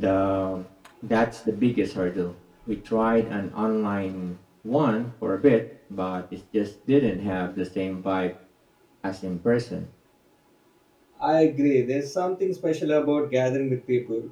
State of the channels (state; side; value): identical; both; correlation 1.00